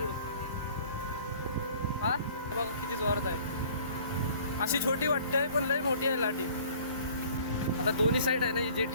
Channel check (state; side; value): inverted; both; correlation -0.52